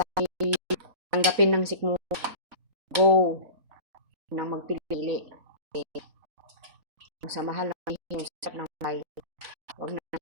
tanggapin ng sikmo. Go. Nang magpili. Sa mahal ng hirap ng may. Huwag na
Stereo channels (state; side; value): late; left; 3.9 ms